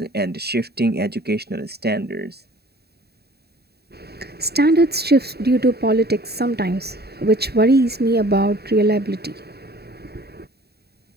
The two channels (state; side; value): late; left; 0.47 ms